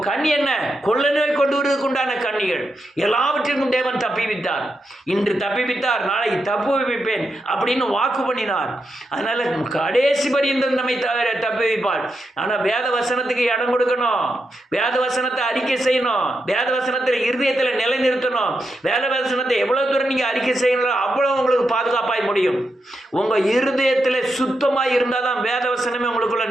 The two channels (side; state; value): both; normal; correlation 0.85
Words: கண்ணி என்ன? கொள்ள நோய் கொண்டு வருவதற்கு உண்டான கன்னிகள். எல்லாவற்றிற்கும் தேவன் தப்பிவித்தார். இன்று தப்பிவித்தார், நாளைக்கு தப்பு வைப்பேன் அப்படின்னு வாக்கு பண்ணினார். அதனால கடைசி பரியந்தம் நம்மை தப்பி வைப்பார். ஆனால் வேத வசனத்துக்கு இடம் கொடுக்கணும், வேத வசனத்தை அறிக்கை செய்யணும், வேத வசனத்தில் இருதயத்தில் நிலைநிறுத்தணும். வேத வசனத்தை எவ்வளவு தூரம் நீங்கள் அறிக்கை செய்யணும், அவ்வளோ உங்களுக்கு பாதுகாப்பாய் முடியும். உங்கள் இருதயத்தில் சுத்தமாக இருந்தால் தான் வேத வசனமே உங்களுக்குள்ள